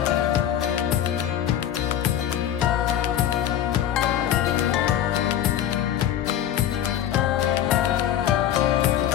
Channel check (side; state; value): right; quieter; 10.9 dB